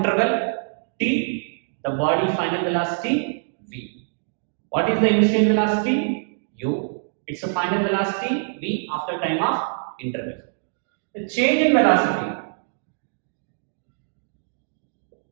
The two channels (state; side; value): silent; left; digital silence